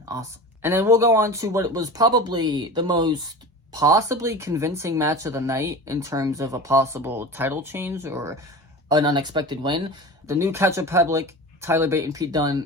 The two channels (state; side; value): normal; both; correlation 0.32